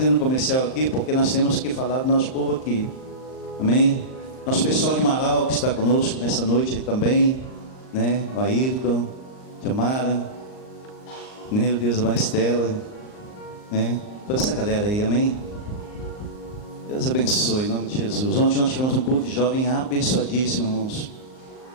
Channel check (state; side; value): late; right; 38 ms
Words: um comercial aqui porque nós temos que falar do nosso povo aqui. Amém? Nosso pessoal de Marau que está conosco nessa noite aí também, né? O Ayrton, Jamara, meu Deus, a Maristela, né? Toda essa galera aí, amém? Deus abençoe, em nome de Jesus. Ontem nós tivemos um culto de jovem abençoadíssimo, irmãos.